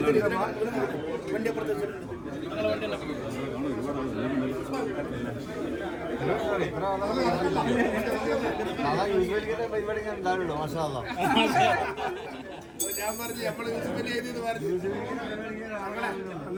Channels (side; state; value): both; identical; correlation 1.00